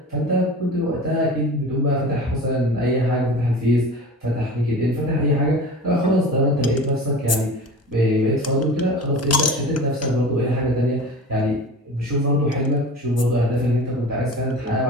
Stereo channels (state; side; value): normal; both; correlation 0.36